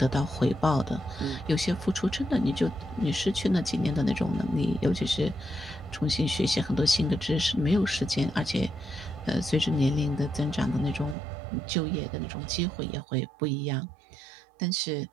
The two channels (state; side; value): drops out; left; at 11.2 s